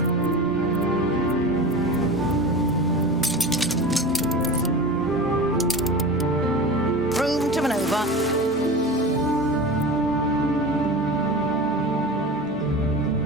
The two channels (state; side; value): normal; both; correlation 0.31